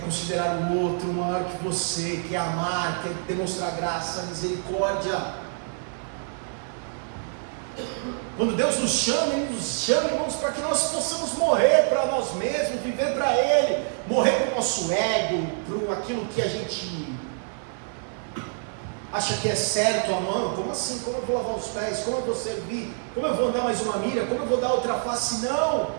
o outro maior que você, que é amar, que é demonstrar graça, misericórdia. Quando Deus nos chama, Ele nos chama, irmãos, para que nós possamos morrer para nós mesmos, viver para Ele, morrer para o nosso ego, para aquilo que a gente acha que é certo, amando. Como assim? Como eu vou lavar os pés? Como eu vou servir? Como eu vou dar mais uma milha? Como eu vou dar outra face?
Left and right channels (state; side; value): silent; left; digital silence